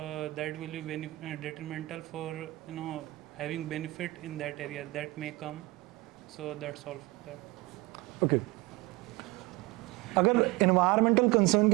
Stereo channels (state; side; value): quieter; left; 21.3 dB